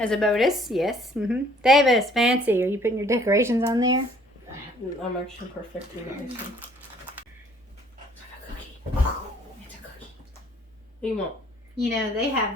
a bonus. Yes. Davis, fancy. Are you putting your decorations on there? I'm actually perfecting the icing. It's a cookie. It's a cookie. What do you want? You know, they have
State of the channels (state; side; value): normal; both; correlation 0.59